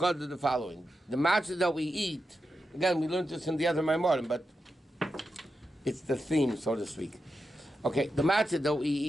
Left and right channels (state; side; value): normal; both; correlation 0.89